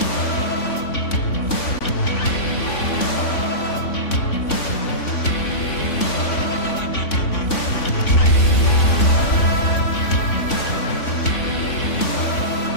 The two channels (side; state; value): right; late; 3.5 ms